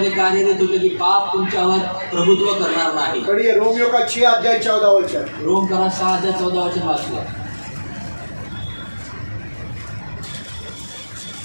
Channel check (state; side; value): inverted; both; correlation -1.00